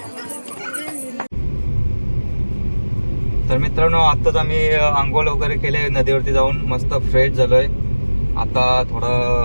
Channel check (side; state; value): both; inverted; correlation -1.00